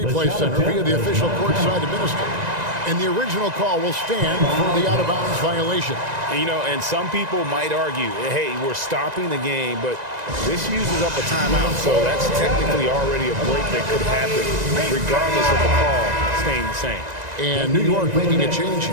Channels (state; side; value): late; left; 1.9 ms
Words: Center via the official courtside administrator. And the original call will stand for the out-of-bounds violation. And some people might argue, hey, we're stopping the game, but this uses up a timeout, so that's technically already a break that could happen, regardless of the call staying the same. And New York making a change